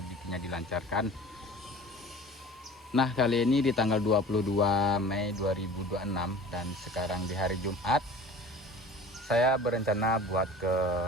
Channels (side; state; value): both; normal; correlation 0.42